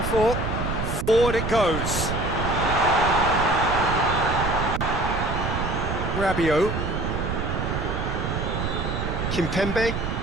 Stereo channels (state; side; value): noise; right; rumble, 3 dB below the sound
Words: for. Forward it goes. Rabiot. Kimpembe.